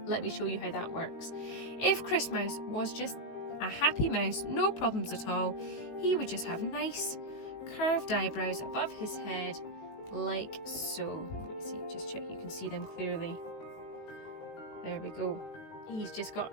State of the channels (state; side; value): late; right; 18 ms